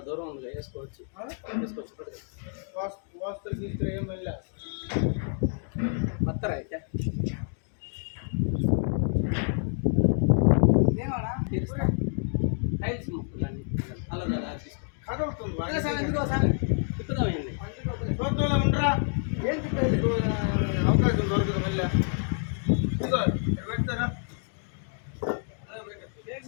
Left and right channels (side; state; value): right; silent; 59 dB below the other